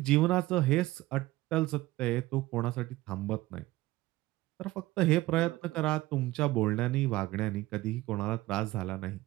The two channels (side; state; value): left; quieter; 17.9 dB